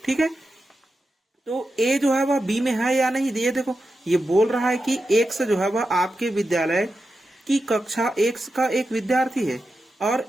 ठीक है। तो ए जो है वह बी में है या नहीं, ये देखो ये बोल रहा है कि एक्स जो है वह आपके विद्यालय की कक्षा एक्स का एक विद्यार्थी है, और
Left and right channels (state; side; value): normal; both; correlation 0.90